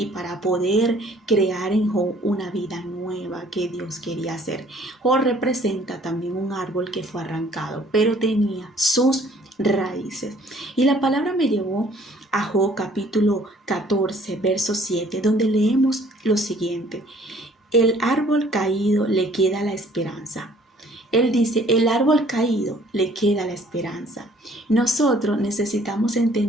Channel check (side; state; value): both; normal; correlation 0.58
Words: para poder crear en Job una vida nueva que Dios quería hacer. Job representa también un árbol que fue arrancado, pero tenía sus raíces. Y la palabra me llevó a Job capítulo 14, verso 7, donde leemos lo siguiente: el árbol caído le queda la esperanza. Él dice, el árbol caído le queda la esperanza. Nosotros necesitamos